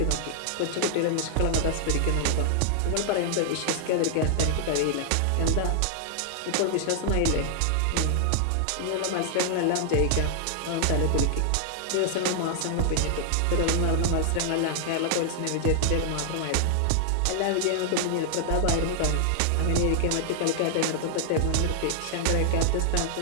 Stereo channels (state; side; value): different; both; correlation 0.00